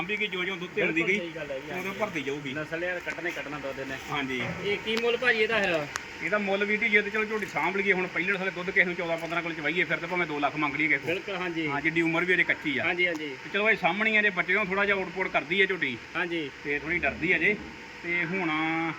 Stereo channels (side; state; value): both; identical; correlation 1.00